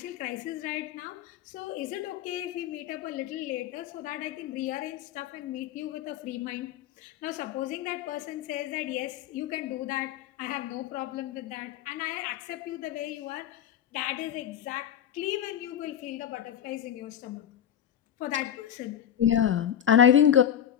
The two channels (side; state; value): right; quieter; 10.1 dB